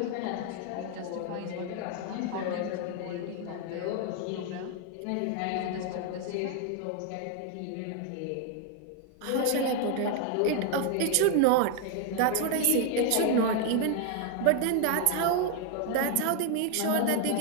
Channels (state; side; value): different; both; correlation 0.00